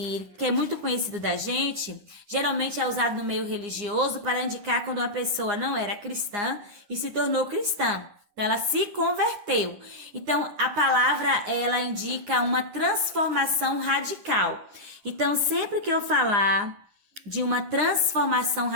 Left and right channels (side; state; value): left; late; 9.8 ms